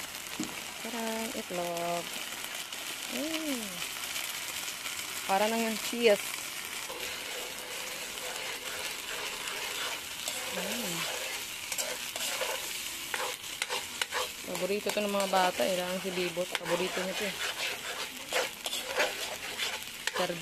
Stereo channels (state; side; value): identical; both; correlation 1.00